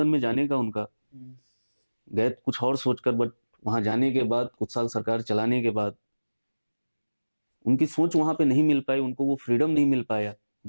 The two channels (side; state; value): both; inverted; correlation -1.00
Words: में जाने का उनका। गए कुछ और सोचकर, बट वहां जाने के बाद, कुछ साल सरकार चलाने के बाद उनकी सोच वहां पे नहीं मिल पाई, उनको वो फ्रीडम नहीं मिल पाया,